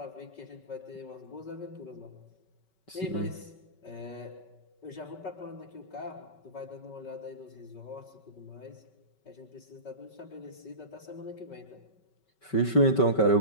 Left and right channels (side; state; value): right; late; 5.3 ms